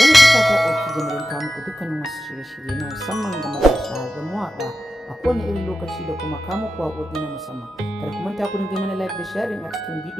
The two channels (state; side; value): normal; both; correlation 0.91